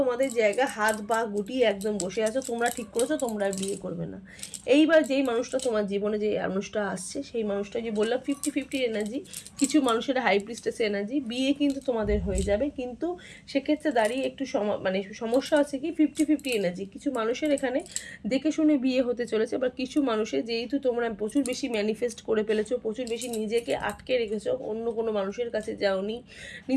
জায়গা হাত পা গুটিয়ে একদম বসে আছো, তোমরা ঠিক করেছো তোমরা আর বিয়ে করবে না। এইবার যেই মানুষটা তোমার জীবনে যে মানুষটা আসছে, সেই মানুষটা যে বললাম 50-50 এনার্জি, কিছু মানুষের হাই প্রিস্টেস এনার্জি, বিয়ে কিন্তু তোমাদের হয়ে যাবে, কিন্তু সেক্ষেত্রে দাঁড়িয়ে একটু মানে সমস্যা আছে কি 50-50 এনার্জি, কিছু মানুষের এখানে দেখে শুনে বিয়ে হতে চলেছে। বা কিছু মানুষের যেহেতু তোমরা প্রচুর বেশি ম্যানিফেস্ট করে ফেলেছো, প্রচুর বেশি নিজেকে আটকে রেখেছো, অন্য কোনো মানুষের কাছে যাওনি,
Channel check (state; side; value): identical; both; correlation 1.00